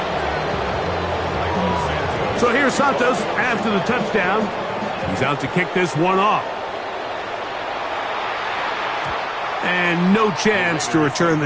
So here's Santos after the touchdown. He's out to kick this one off. And no chance to return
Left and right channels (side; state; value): both; identical; correlation 1.00